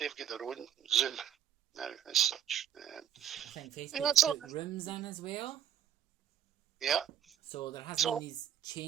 their own Zoom now as such. I think Facebook's put rooms in as well. Yeah. So there has been these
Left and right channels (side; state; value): left; quieter; 10.0 dB